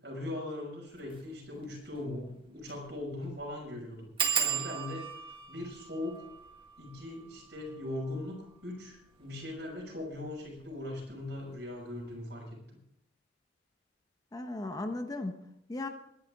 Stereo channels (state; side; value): normal; both; correlation 0.40